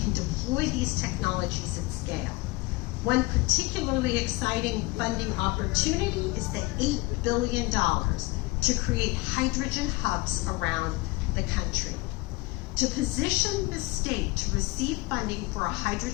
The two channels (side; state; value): right; quieter; 22.7 dB